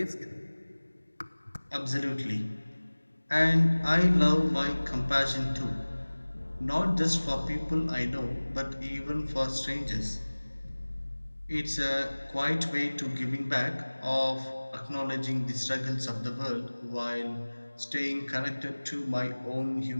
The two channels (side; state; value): both; inverted; correlation -1.00